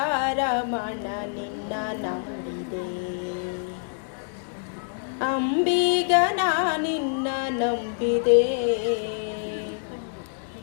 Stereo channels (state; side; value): silent; right; digital silence